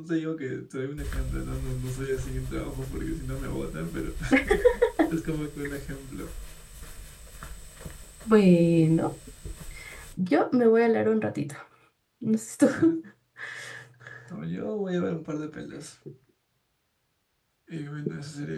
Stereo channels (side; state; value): both; identical; correlation 1.00